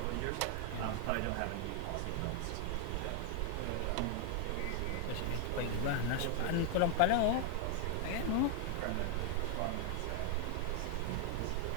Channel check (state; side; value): different; both; correlation 0.00